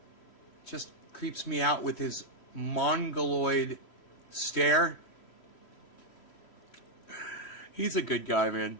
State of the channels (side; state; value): right; late; 3.1 ms